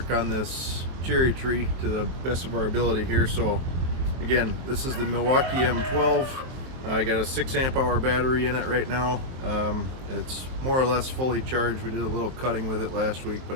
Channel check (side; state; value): left; late; 23 ms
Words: on this cherry tree to the best of our ability here. So again, this is the Milwaukee M12. I got a 6 amp hour battery in it right now. It's more or less fully charged. We did a little cutting with it last week, but